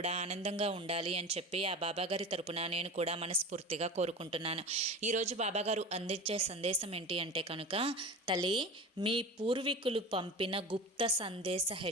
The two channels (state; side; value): normal; both; correlation 0.32